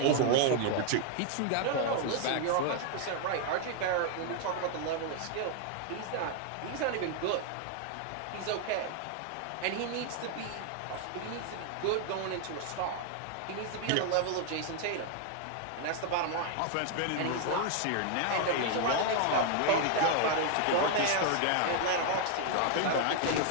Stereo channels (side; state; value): both; different; correlation 0.00